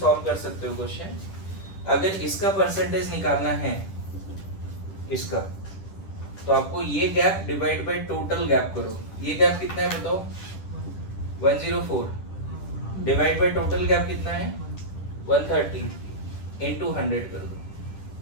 कर सकते हो क्वेश्चन। अगर इसका परसेंटेज निकालना है इसका, तो आपको ये gap divide by total gap करो। ये गैप कितना है बताओ? 104 डिवाइड बाय टोटल गैप कितना है 130 इनटू 100 कर दो।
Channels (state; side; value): late; right; 10 ms